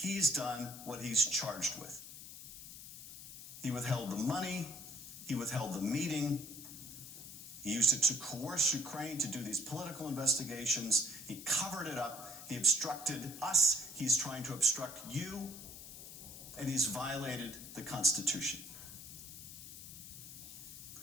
done what he's charged with. He withheld the money, he withheld the meeting, he used it to coerce Ukraine to do these political investigations, he covered it up, he obstructed us, he's trying to obstruct you, and he's violated the Constitution.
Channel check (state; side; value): noise; left; hiss, 12 dB below the sound